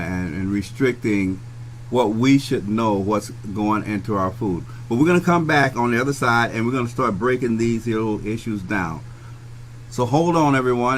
restricting what we should know what's going into our food. But we're going to come back on the other side, and we're going to start breaking these little issues down. So hold on,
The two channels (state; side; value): identical; both; correlation 1.00